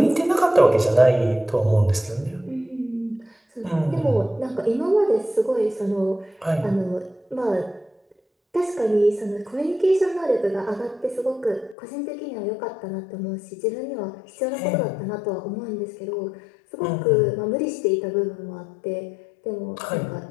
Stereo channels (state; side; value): drops out; right; at 11.8 s